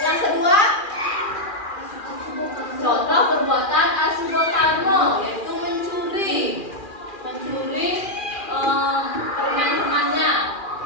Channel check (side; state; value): right; late; 2.4 ms